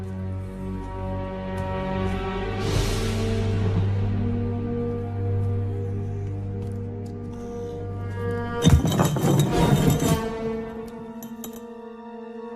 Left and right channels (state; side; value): identical; both; correlation 1.00